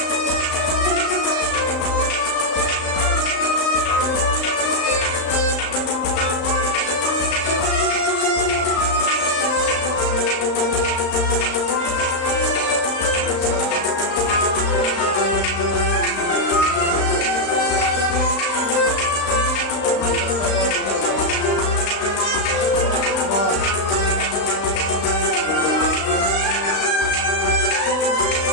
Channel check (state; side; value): late; right; 35 ms